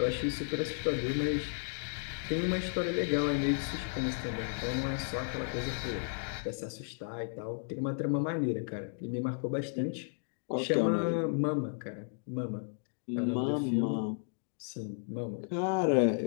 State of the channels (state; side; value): silent; right; digital silence